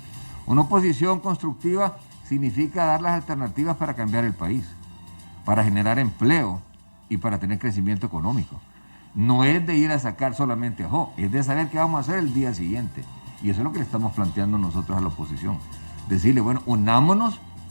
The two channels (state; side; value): inverted; both; correlation -1.00